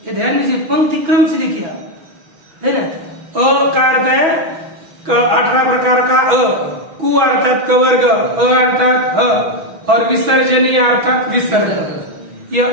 ध्यान दीजिए पंक्ति क्रम से लिखिए है ना। अ का अर्थ है 18 प्रकार का अ, कु अर्थात कवर्ग, अ अर्थात ह, और विसर्जनीय अर्थात विसर्ग। ये अ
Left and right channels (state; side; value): late; left; 6.1 ms